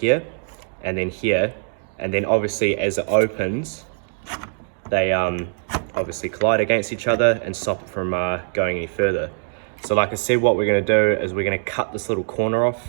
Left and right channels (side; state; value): left; silent; digital silence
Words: and then obviously as it opens, they obviously collide against each other and stop it from going any further. So like I said, what we're going to do is we're going to cut this little corner